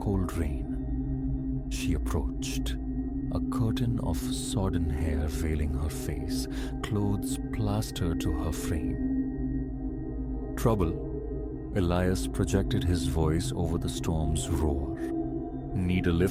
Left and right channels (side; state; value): both; identical; correlation 1.00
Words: rain. She approached, a curtain of sodden hair veiling her face, clothes plastered to her frame. Trouble? Elias projected his voice over the storm's roar. Need a